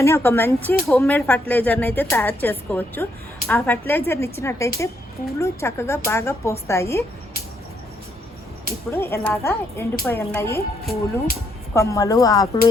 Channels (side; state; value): both; normal; correlation 0.74